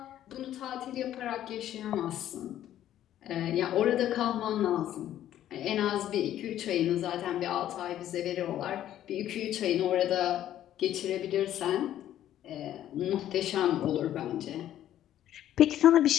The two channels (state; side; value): quieter; right; 11.9 dB